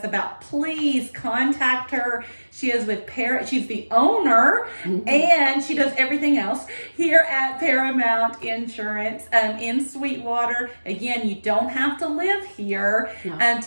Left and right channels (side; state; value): both; inverted; correlation -1.00